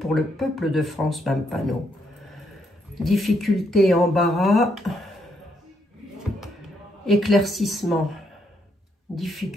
le peuple de France, Madame Panot? Difficulté, embarras, éclaircissement.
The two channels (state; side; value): normal; both; correlation 0.75